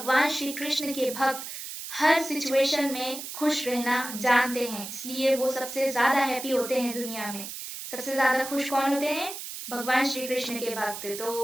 श्री कृष्ण के भक्त हर सिचुएशन में खुश रहना जानते हैं, इसलिए वो सबसे ज्यादा हैप्पी होते हैं दुनिया में। सबसे ज्यादा खुश कौन होते हैं? भगवान श्री कृष्ण के भक्त। तो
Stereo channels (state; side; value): noise; right; hiss, 9 dB below the sound